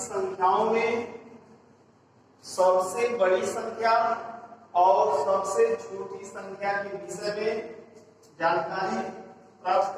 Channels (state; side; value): identical; both; correlation 1.00